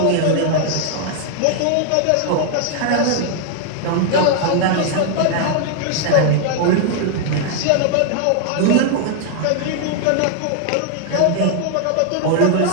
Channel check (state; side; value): different; both; correlation 0.00